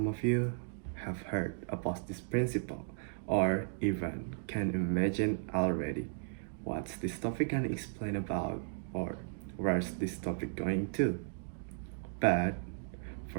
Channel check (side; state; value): left; silent; digital silence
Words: of you have heard about this principle or even can imagine already what's this topic gonna explain about or where's this topic going to. But